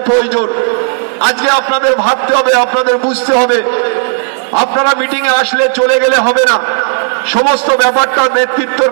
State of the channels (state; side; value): silent; left; digital silence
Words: প্রয়োজন আজকে আপনাদের ভাবতে হবে, আপনাদের বুঝতে হবে। আপনারা মিটিং এ আসলে চলে গেলে হবে না, সমস্ত ব্যাপারটা নেতৃত্বের